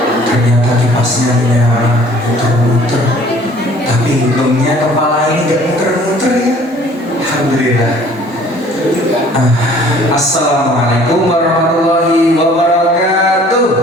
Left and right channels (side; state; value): both; normal; correlation 0.53